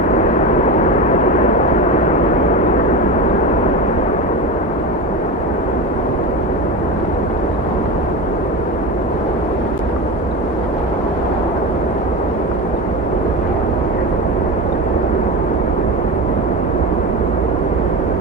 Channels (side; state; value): both; normal; correlation 0.23